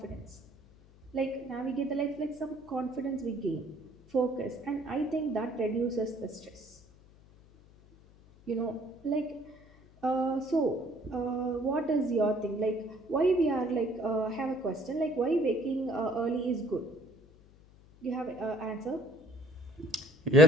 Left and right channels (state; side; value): noise; left; hum, 25 dB below the sound